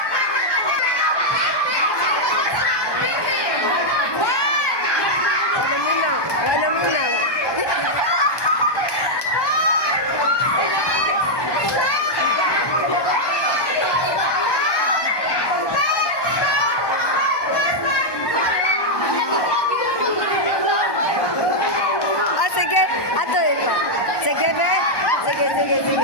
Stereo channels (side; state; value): right; late; 1.2 ms